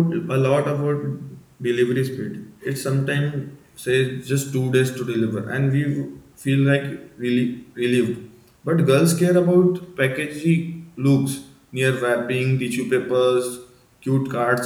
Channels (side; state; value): both; identical; correlation 1.00